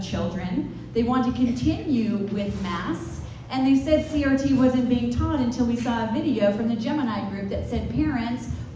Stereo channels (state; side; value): identical; both; correlation 1.00